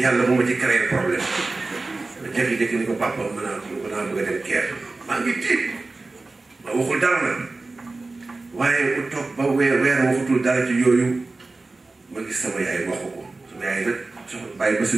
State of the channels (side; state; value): left; quieter; 3.4 dB